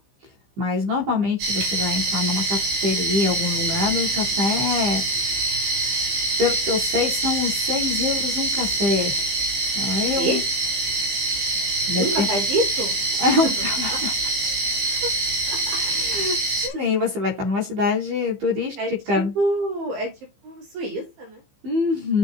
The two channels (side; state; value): left; late; 15 ms